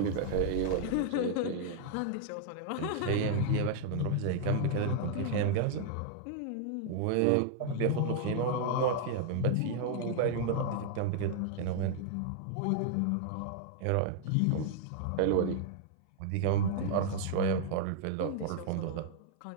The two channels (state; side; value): different; both; correlation -0.01